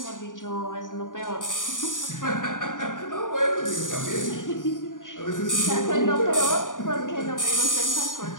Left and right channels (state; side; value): late; right; 0.88 ms